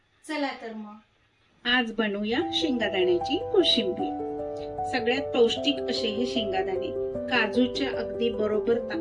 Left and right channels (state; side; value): identical; both; correlation 1.00